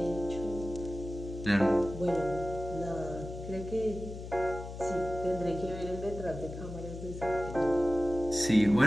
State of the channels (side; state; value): left; noise; hum, 10 dB below the sound